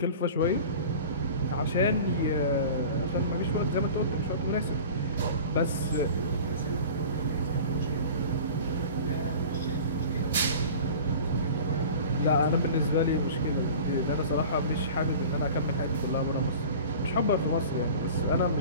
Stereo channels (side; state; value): both; inverted; correlation -0.39